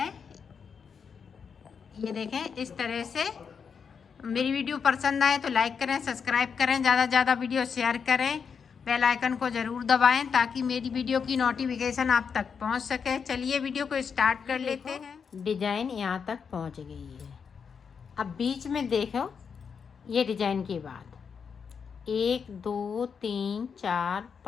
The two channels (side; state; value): right; quieter; 6.3 dB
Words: ये देखें इस तरह से। मेरी वीडियो पसंद आए तो लाइक करें, सब्सक्राइब करें, ज़्यादा से ज़्यादा वीडियो शेयर करें, बेल आइकन को ज़रूर दबाएं ताकि मेरी वीडियो की नोटिफिकेशन आप तक पहुंच सके। चलिए वीडियो को स्टार्ट कर लेते हैं। डिज़ाइन यहाँ तक पहुंच गई है। अब बीच में देखो, ये डिज़ाइन के बाद 1 2 3 4